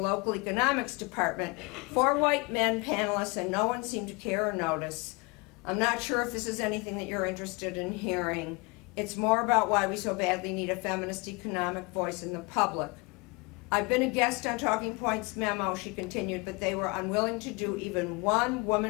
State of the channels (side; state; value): right; quieter; 28.2 dB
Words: economics department. 4 white men panelists, and no one seemed to care or notice. I'm not sure if this is anything that you're interested in hearing. It's more about why we so badly need a feminist economic voice in the public. I've been a guest on Talking Points Memo, she continued, but they were unwilling to do even one